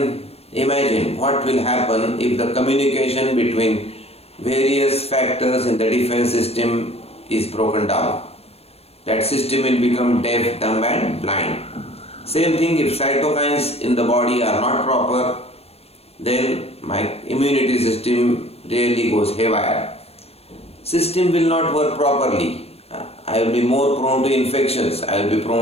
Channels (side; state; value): right; late; 0.29 ms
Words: imagine what will happen if the communication between various factors in the defense system is broken down. That system will become deaf, dumb and blind. Same thing, if cytokines in the body are not proper, then my immunity system really goes haywire. System will not work properly. I will be more prone to infections, I will be